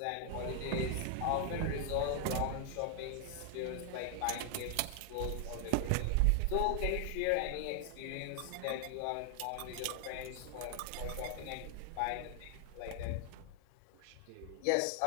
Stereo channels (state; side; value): different; both; correlation 0.00